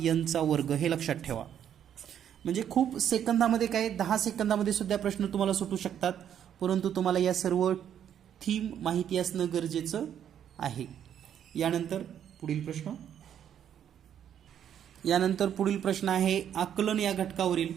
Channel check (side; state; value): left; quieter; 9.5 dB